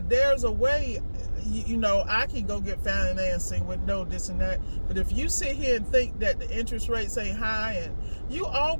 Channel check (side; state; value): both; inverted; correlation -1.00